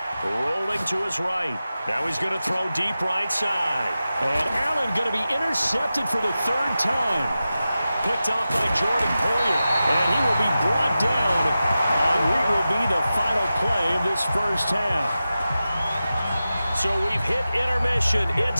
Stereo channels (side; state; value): both; inverted; correlation -0.93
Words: Rolling to his right. Now he's going to throw deep right side. And Allen going to be intercepted for the 3rd time. Picked off by Jordan Poyer. And he will be brought down on what will be the final play of this first half. So we've hit intermission.